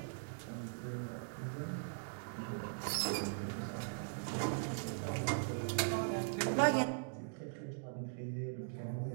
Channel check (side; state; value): left; silent; digital silence